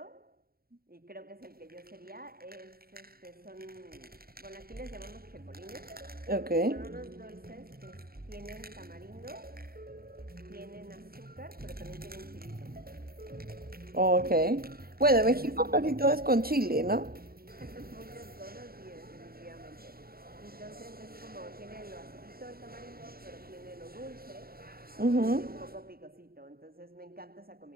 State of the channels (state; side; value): late; left; 0.44 ms